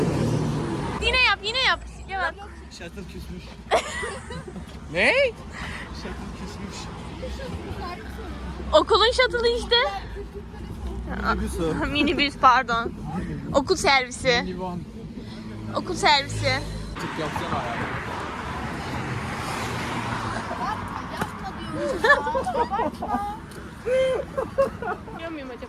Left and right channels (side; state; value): both; identical; correlation 1.00